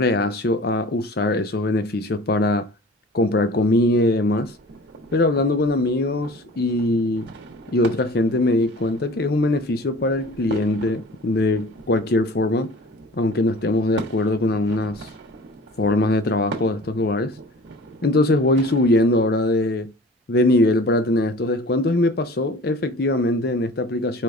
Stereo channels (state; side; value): normal; both; correlation 0.44